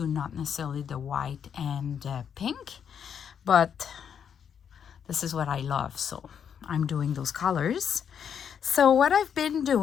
not necessarily the white and pink. But this is what I love, so I'm doing those colors. So what I've been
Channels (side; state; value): right; quieter; 7.9 dB